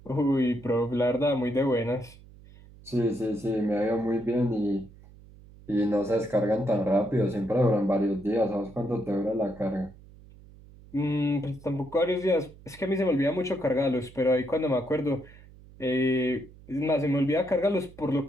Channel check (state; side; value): noise; right; hum, 22 dB below the sound